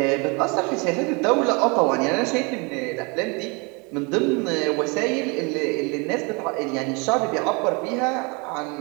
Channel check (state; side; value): quieter; left; 30.1 dB